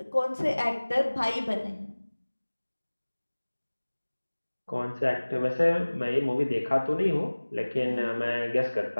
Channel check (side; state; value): both; inverted; correlation -1.00